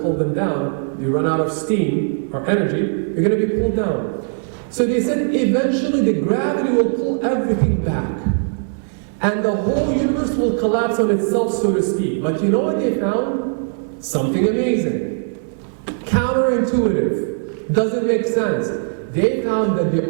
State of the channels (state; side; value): silent; left; 66 dB below the other